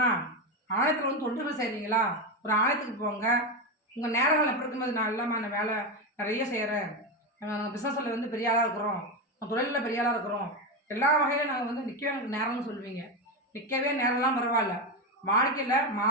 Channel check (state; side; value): normal; both; correlation 0.13